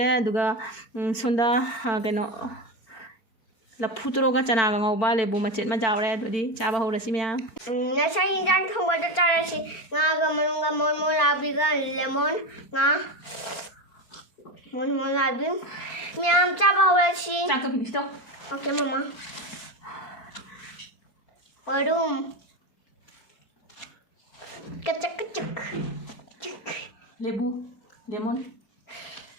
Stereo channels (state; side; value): late; right; 4.3 ms